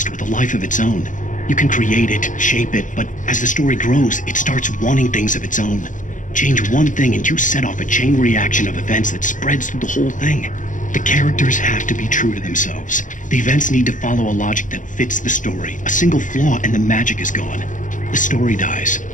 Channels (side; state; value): right; late; 0.37 ms